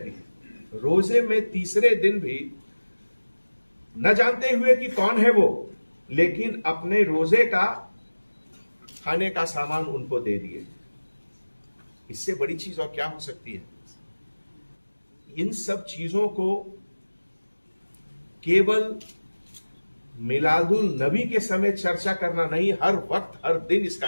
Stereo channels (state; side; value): inverted; both; correlation -1.00